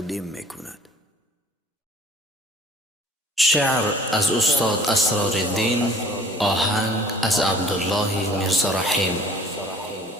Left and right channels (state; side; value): normal; both; correlation 0.51